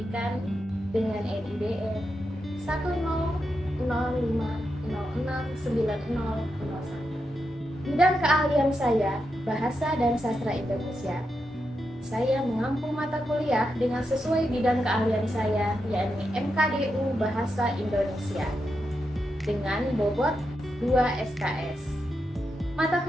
dengan NIDE 10050609001. Bidang keahlian saya, Bahasa dan Sastra Indonesia. Saya mengampu mata kuliah dengan sesuai bidang keahlian saya, yakni MKDU Bahasa Indonesia, dengan bobot 2 SKS. Mata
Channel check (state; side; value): normal; both; correlation 0.86